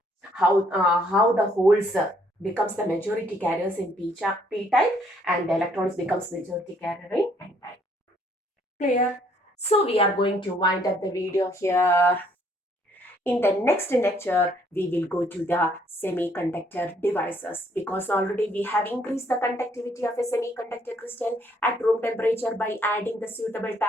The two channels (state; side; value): normal; both; correlation 0.66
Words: how the holes becomes the majority carriers in P type and the electrons becomes majority carrier in N type. Clear? So we are going to wind up the video here. In the next lecture, we will go to the semiconductor devices because already we have increased the conductivity of a semiconductor crystal at room temperature by adding the suitable